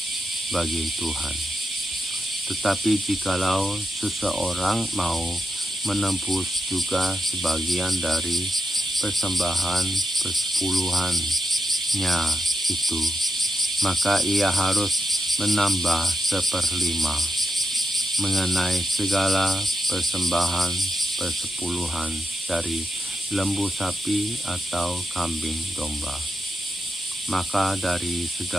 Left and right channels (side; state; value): both; normal; correlation 0.87